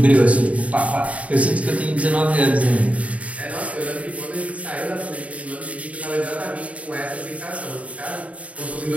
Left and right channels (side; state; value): left; late; 0.067 ms